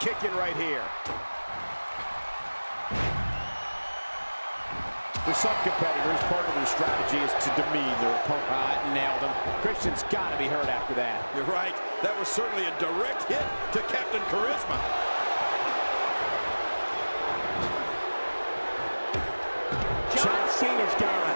right here. For some competitors, part of their strategy is to demean their opponent. Nailed him. Christian's got to be hurt after that. You're right. That was certainly a direct hit to Captain Charisma. John Cena's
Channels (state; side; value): inverted; both; correlation -1.00